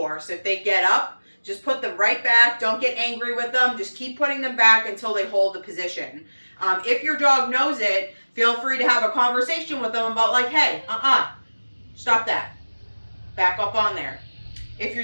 If they get up, just put them right back. Don't get angry with them. Just keep putting them back until they hold the position. If your dog knows it, feel free to have a conversation with them about like, hey, stop that. Back up on there. If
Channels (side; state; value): both; inverted; correlation -1.00